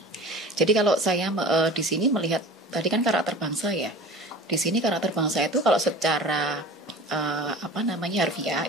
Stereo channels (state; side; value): normal; both; correlation 0.38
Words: Jadi kalau saya di sini melihat tadi kan karakter bangsa ya. Di sini karakter bangsa itu kalau secara harfiah